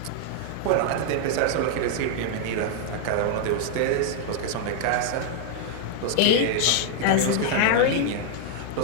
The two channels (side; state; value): both; different; correlation 0.00